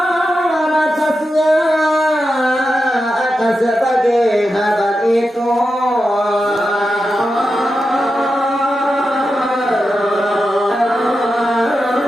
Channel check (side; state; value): both; normal; correlation 0.89